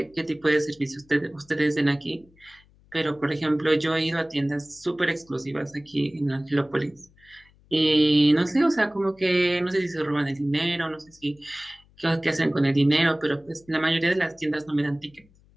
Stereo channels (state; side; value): noise; left; hum, 30 dB below the sound